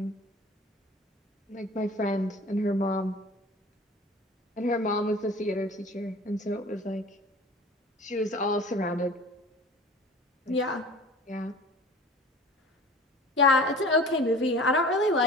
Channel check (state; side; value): normal; both; correlation 0.42